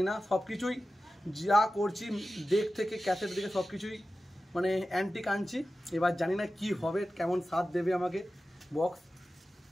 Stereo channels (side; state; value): both; normal; correlation 0.94